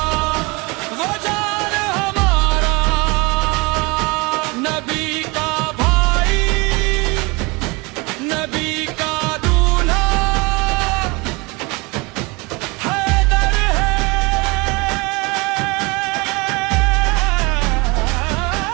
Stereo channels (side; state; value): left; quieter; 26.6 dB